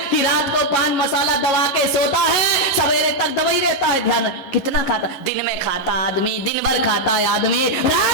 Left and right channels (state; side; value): late; right; 11 ms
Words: कि रात को पान मसाला दबा के सोता है, सवेरे तक दबा ही रहता है। ध्यान, कितना खाता? दिन में खाता आदमी, दिन भर खाता है आदमी,